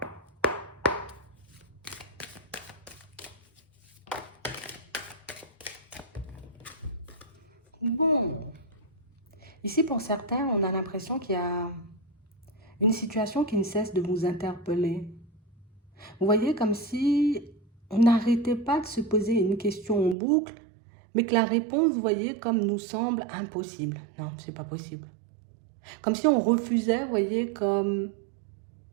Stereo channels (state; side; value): drops out; left; at 20.2 s